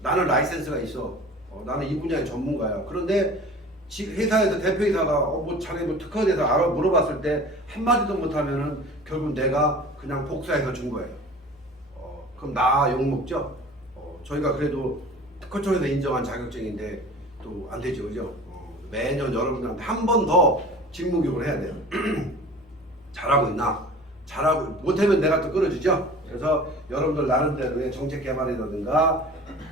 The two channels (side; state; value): both; normal; correlation 0.42